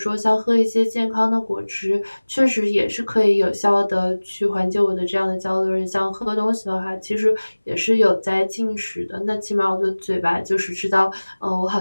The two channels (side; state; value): both; inverted; correlation -1.00